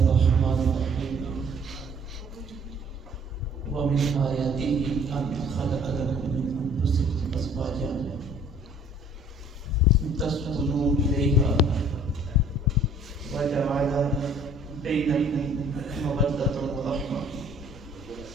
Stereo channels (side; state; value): both; normal; correlation 0.55